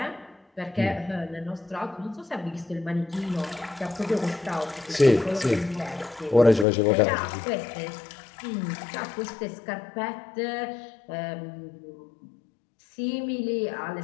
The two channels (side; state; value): right; drops out; at 6.7 s